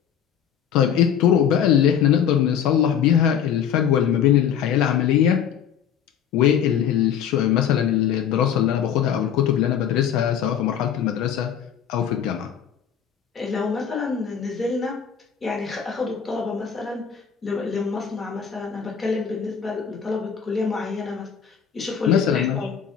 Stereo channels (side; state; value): right; quieter; 8.5 dB